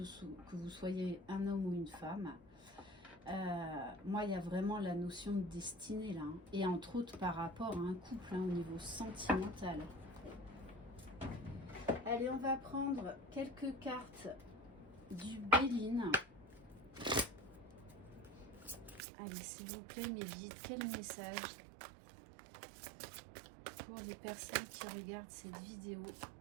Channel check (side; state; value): left; drops out; at 19.0 s